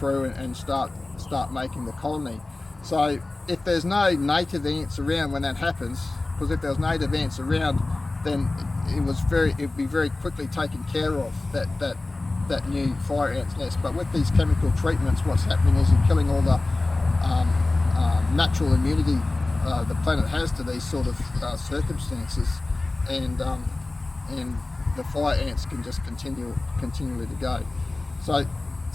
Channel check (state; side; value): quieter; right; 3.1 dB